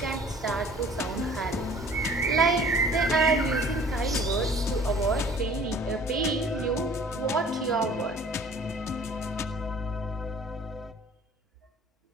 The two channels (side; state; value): both; normal; correlation 0.51